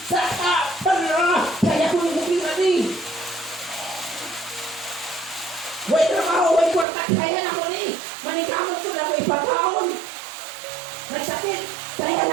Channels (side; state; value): left; drops out; at 6.9 s